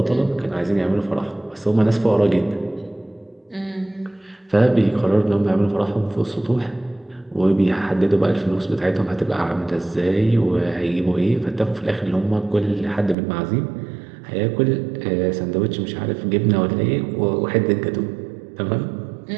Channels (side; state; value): left; drops out; at 13.2 s